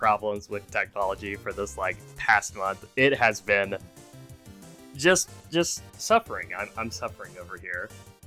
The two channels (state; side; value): identical; both; correlation 1.00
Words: with technology for this, past month. It has been just suffering. I'm suffering over here.